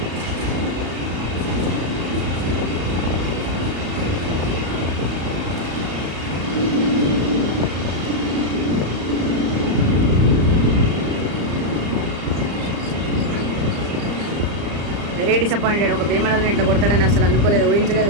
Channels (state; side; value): late; left; 34 ms